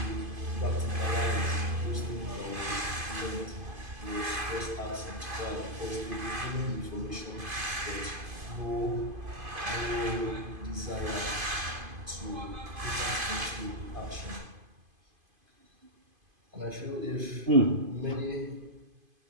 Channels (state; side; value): late; left; 2.5 ms